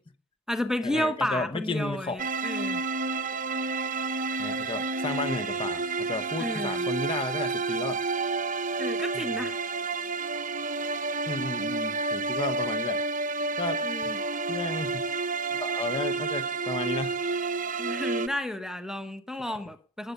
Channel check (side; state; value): both; normal; correlation 0.18